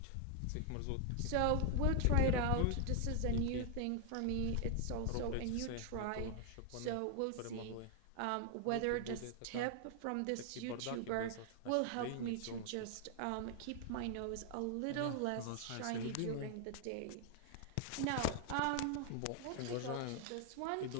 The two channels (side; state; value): both; different; correlation 0.00